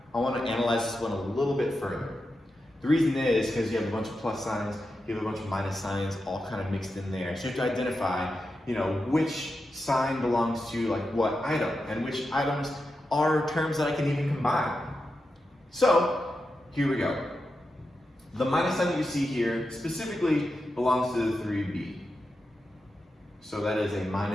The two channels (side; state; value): both; normal; correlation 0.89